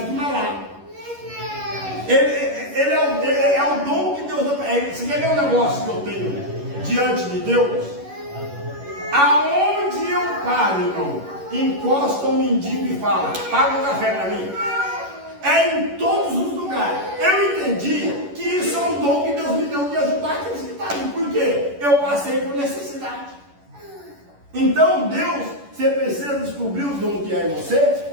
vai lá. Ele é o dom que Deus dá. Você quer ver um negócio que eu tenho diante de Deus? Aonde eu paro, irmão, encosta um mendigo e fala: paga um café para mim. É em todos os lugares. Eu entendi que isso é um dom que Deus me deu de ajudar aqueles que estão ali. Por quê? Eu passei por necessidade. Então, Deus, você precisa descobrir o dom que é em você,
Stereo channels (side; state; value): left; late; 11 ms